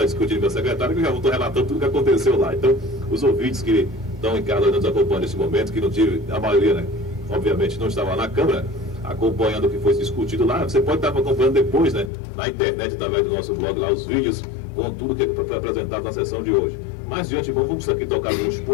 discutindo com a secretária, que eu já estou relatando tudo o que aconteceu lá. Então, os ouvintes que estão em casa nos acompanhando nesse momento, que não tive, a maioria, né, obviamente não estava na Câmara, acompanhando o que foi discutido lá, você pode estar acompanhando depois, né, na internet, através do nosso blog lá, os vídeos com tudo que foi apresentado na sessão de hoje. Mas, de antemão, vamos aqui tocar alguns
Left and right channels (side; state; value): right; drops out; at 12.1 s